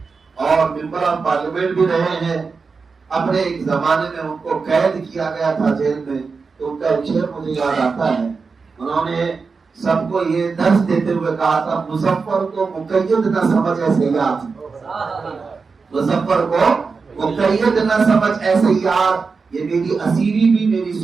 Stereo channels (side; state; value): left; quieter; 4.8 dB